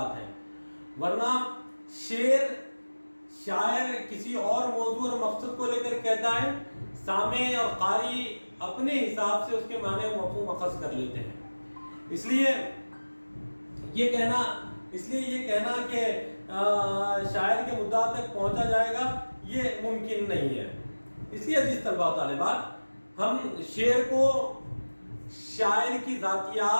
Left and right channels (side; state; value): both; inverted; correlation -1.00